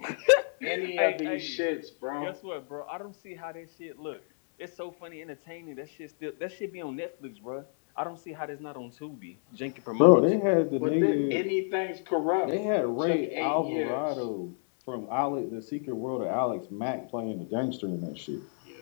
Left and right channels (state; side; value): silent; right; 58 dB below the other